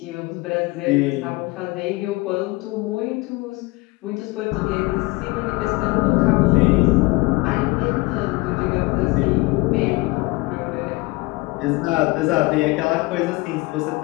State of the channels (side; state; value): right; quieter; 23.3 dB